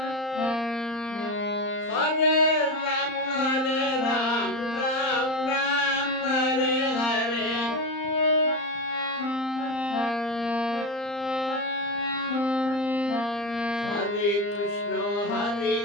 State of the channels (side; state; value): right; late; 34 ms